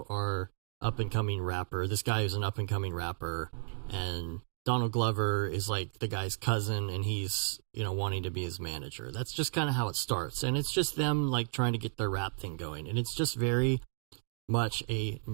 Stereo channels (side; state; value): left; silent; digital silence